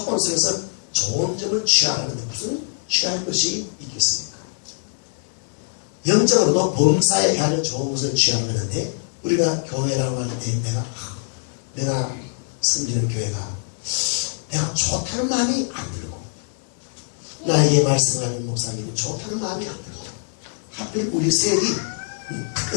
속에서 좋은 점을 취하라는데 무슨 취할 것이 있겠습니까? 영적으로도 범사에 헤아려 좋은 것을 취하라고 하는데 우리가 교회라고 할 때 내가 섬기는 교회가 내가 좋다는 마음이 안 들고 나에게 말씀하는 목사님이 좋다는 마음이 안 들고 하필 우리 셀이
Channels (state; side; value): silent; right; 55 dB below the other